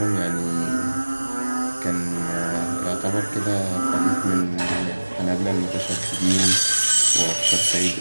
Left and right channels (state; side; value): inverted; both; correlation -1.00